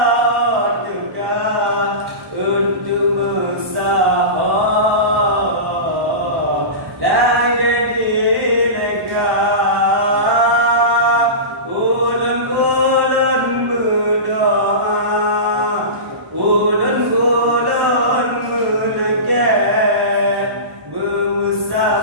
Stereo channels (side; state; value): left; late; 1.1 ms